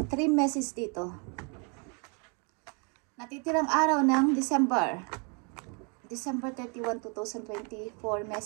3 messages dito. Natitirang araw ng December 31, 2024,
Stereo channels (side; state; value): left; quieter; 35.9 dB